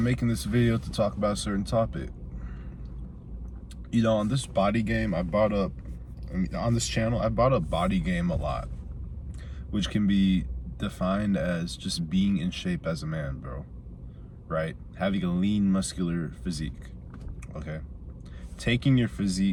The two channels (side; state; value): both; identical; correlation 1.00